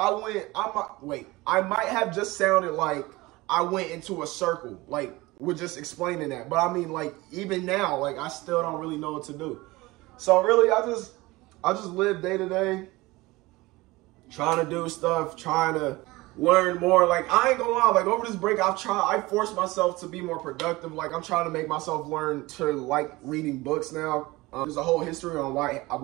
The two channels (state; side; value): quieter; left; 20.9 dB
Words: might have just sounded like I went into a circle, like, with just explaining that. But I mean, like, even now, like, I still don't really know what to do. So really, I just live day to day, trying to do stuff, trying to learn more. Like, I ain't gonna lie, like, over this break, I forced myself to be more productive. Like, I'm trying to make myself learn to like reading books now. There's a whole history on why